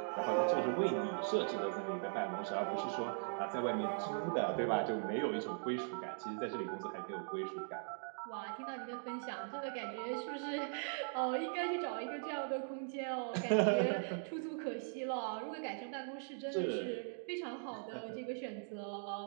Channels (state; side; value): silent; left; digital silence